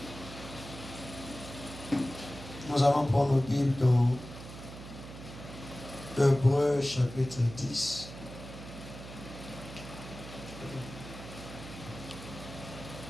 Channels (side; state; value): right; noise; hum, 13 dB below the sound